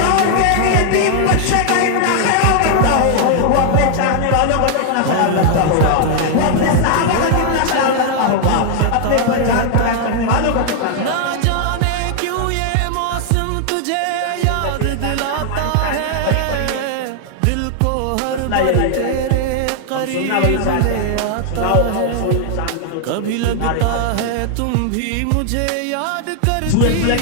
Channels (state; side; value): different; both; correlation 0.00